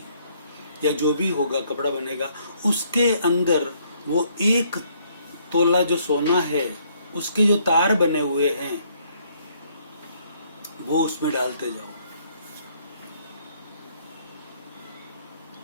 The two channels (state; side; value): inverted; both; correlation -0.67